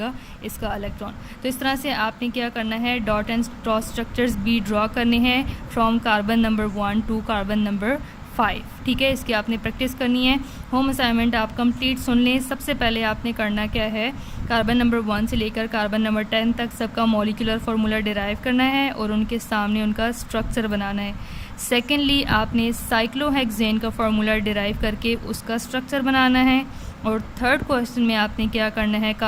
इसका इलेक्ट्रॉन। तो इस तरह से आपने क्या करना है, डॉट एंड क्रॉस स्ट्रक्चर्स भी ड्रॉ करने हैं from carbon number 1 to carbon number 5। ठीक है, इसकी आपने प्रैक्टिस करनी है। होम असाइनमेंट आप कंप्लीट सुन लें। सबसे पहले आपने करना क्या है, कार्बन नंबर 1 से लेकर कार्बन नंबर 10 तक सबका मॉलिक्यूलर फार्मूला डिराइव करना है और उनके सामने उनका स्ट्रक्चर बनाना है। सेकेंडली आपने साइक्लोहेक्सेन का फार्मूला डिराइव करके उसका स्ट्रक्चर बनाना है। और थर्ड क्वेश्चन में आपने क्या करना है,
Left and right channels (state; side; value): identical; both; correlation 1.00